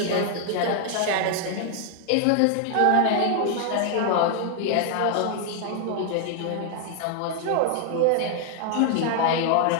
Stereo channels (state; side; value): different; both; correlation 0.00